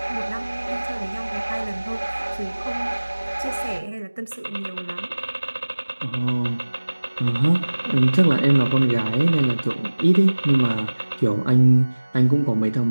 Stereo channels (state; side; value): inverted; both; correlation -1.00